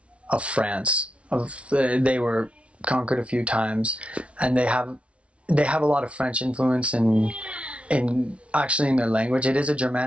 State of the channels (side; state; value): left; late; 0.061 ms